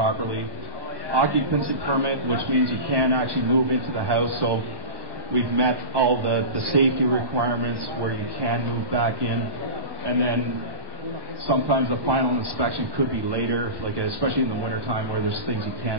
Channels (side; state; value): left; late; 1.1 ms